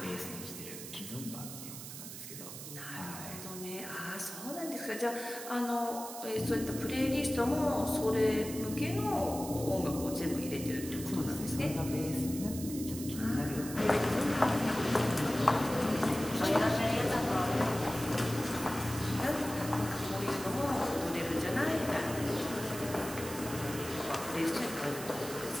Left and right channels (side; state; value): right; noise; hiss, 10 dB below the sound